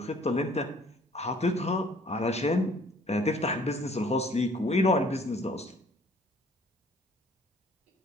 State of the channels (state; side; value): normal; both; correlation 0.57